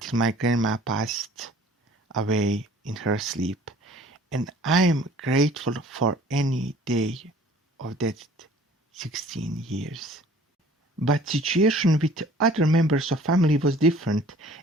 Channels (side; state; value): both; normal; correlation 0.51